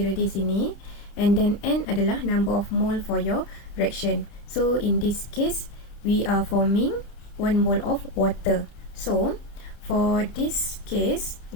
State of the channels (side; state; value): right; late; 29 ms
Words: di sini, and then N adalah number of mole for your reaction. So in this case we are forming 1 mole of water. So for this case,